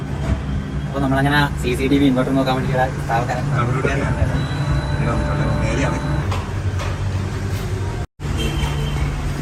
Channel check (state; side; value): identical; both; correlation 1.00